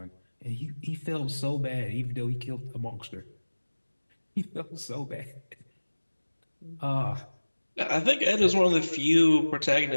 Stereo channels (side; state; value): both; inverted; correlation -1.00